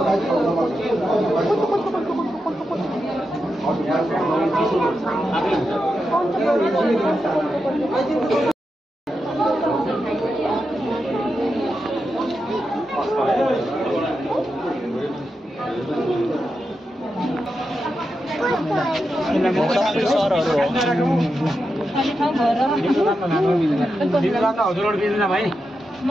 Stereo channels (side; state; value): both; normal; correlation 0.88